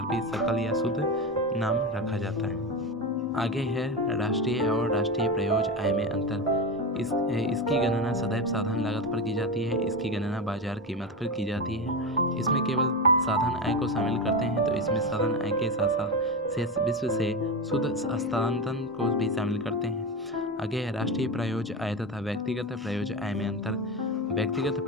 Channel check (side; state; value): both; normal; correlation 0.18